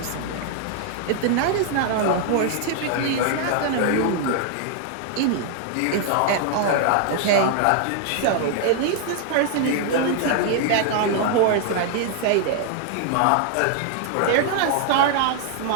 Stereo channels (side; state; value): both; different; correlation 0.00